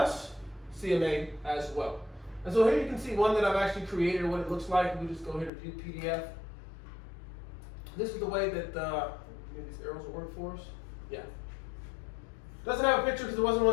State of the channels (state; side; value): drops out; right; at 5.5 s